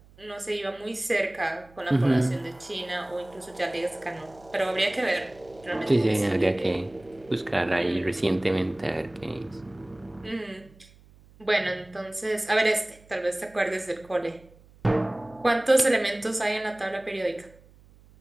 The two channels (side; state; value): right; noise; hum, 26 dB below the sound